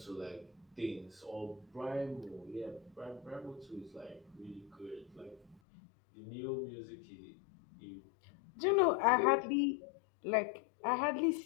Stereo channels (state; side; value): drops out; right; at 5.6 s